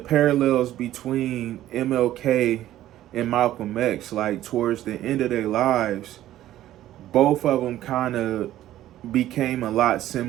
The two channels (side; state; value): left; quieter; 13.5 dB